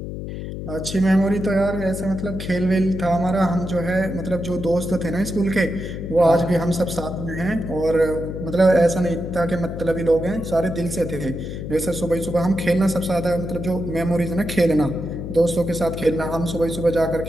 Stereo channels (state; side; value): noise; left; hum, 7 dB below the sound